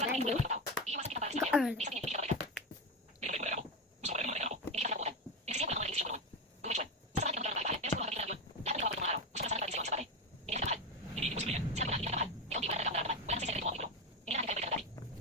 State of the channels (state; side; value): normal; both; correlation 0.16